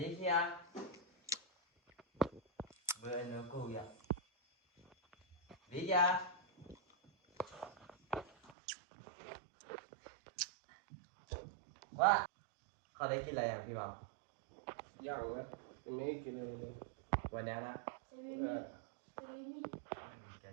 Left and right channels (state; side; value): drops out; left; at 8.6 s